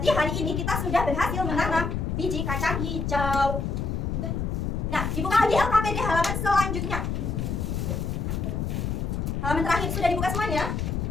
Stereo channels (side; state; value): left; noise; rumble, 1 dB below the sound